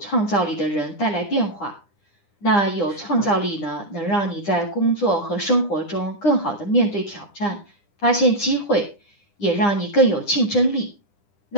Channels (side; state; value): right; late; 9.9 ms